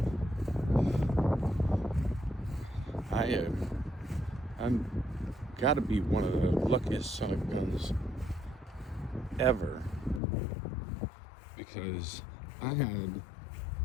I'm gotta be one of the luckiest son of guns ever, because I had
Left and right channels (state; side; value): drops out; right; at 10.2 s